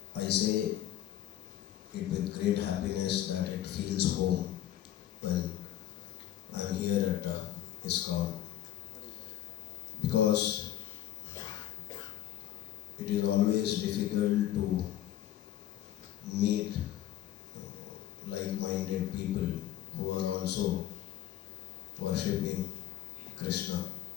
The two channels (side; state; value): right; quieter; 11.8 dB